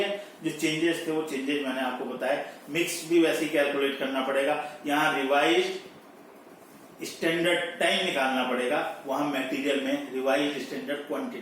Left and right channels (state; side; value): identical; both; correlation 1.00